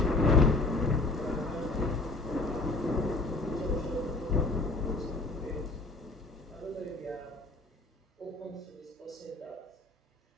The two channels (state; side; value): quieter; right; 3.1 dB